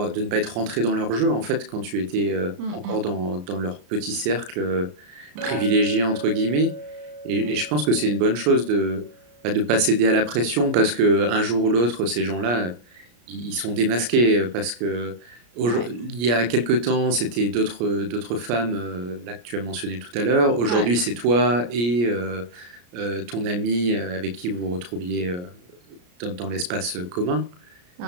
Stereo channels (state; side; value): late; left; 34 ms